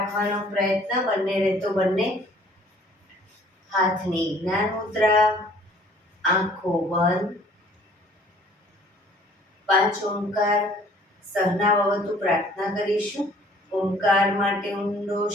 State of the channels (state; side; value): normal; both; correlation 0.55